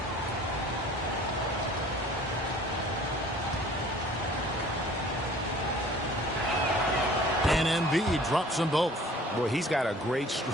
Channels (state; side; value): normal; both; correlation 0.50